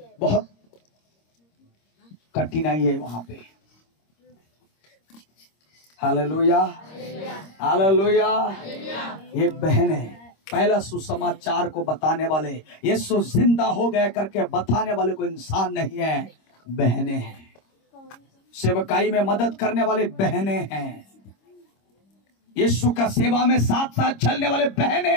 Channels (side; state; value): right; late; 26 ms